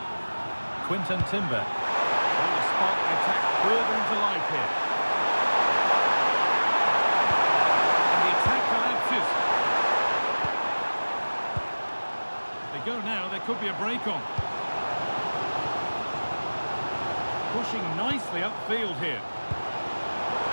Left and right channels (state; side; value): inverted; both; correlation -1.00